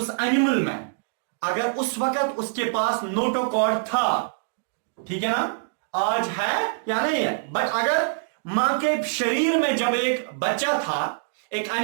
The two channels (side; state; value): left; silent; digital silence